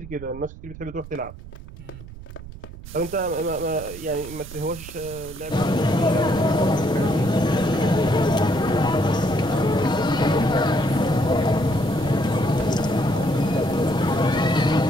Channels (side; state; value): right; noise; rumble, 15 dB below the sound